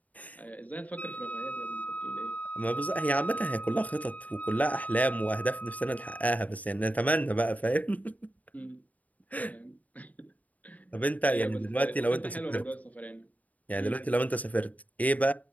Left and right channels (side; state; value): right; late; 0.073 ms